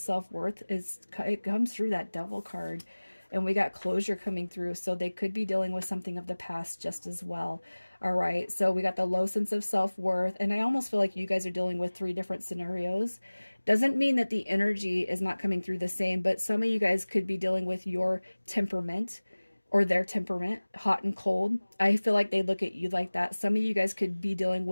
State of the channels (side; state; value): both; inverted; correlation -1.00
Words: it comes through that devil card, and we got closure coming through, so they could be dealing with something of the past just as well. All right, so we got the low sense of self-worth, and I almost feel like you guys are dealing with 3 different scenarios. Doesn't mean that the energy is not coming through the same, but some of you guys could be dealing with your temperament or their temperament, hot and cold. I feel like they look at you like that. Some of you guys could be dealing